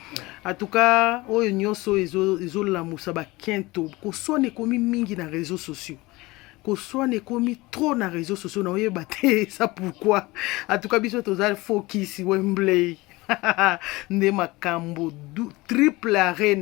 En tout cas oyo nyonso ezolamusa bakento kosone komi mingi na réseaux sociaux. Kosone komi trop na réseaux sociaux na oyeba te ça pourquoi. En tout cas biso tozali focus Wembley. Nde makambo triple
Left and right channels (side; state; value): right; quieter; 21.4 dB